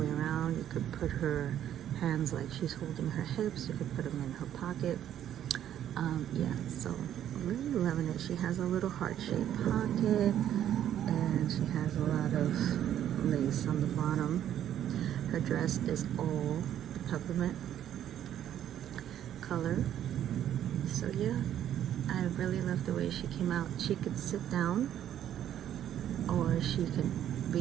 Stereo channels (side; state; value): left; quieter; 10.8 dB